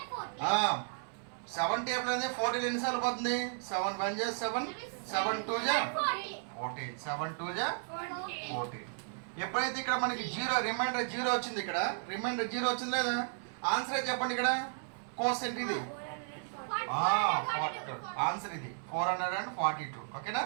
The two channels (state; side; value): silent; left; 55 dB below the other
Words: 7 టేబుల్ అనేది 14 ఎన్నిసార్లు పోతుంది 7 1 జా 7 7 2 జా 14 7 2 జా 14. ఎప్పుడైతే ఇక్కడ మనకి జీరో రిమైండర్ జీరో వచ్చింది ఇక్కడ రిమైండర్ జీరో వచ్చింది లేదా ఆన్సర్ చెప్పండి ఇక్కడ కోసెంట్ ఇది ఆన్సర్ ఇది 442. ఓకేనా